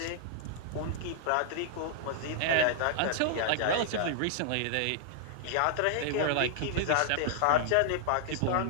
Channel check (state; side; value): different; both; correlation -0.01